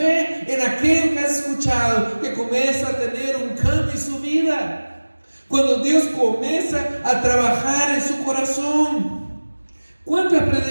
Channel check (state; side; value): inverted; both; correlation -1.00